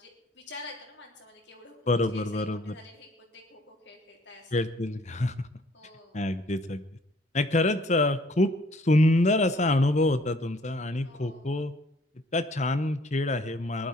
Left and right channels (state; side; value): normal; both; correlation 0.60